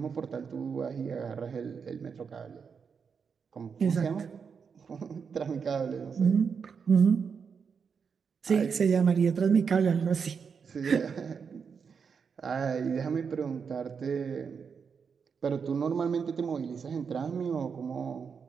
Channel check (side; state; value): left; quieter; 6.1 dB